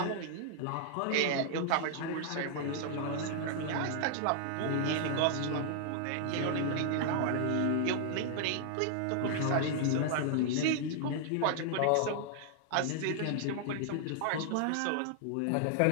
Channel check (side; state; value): both; different; correlation -0.01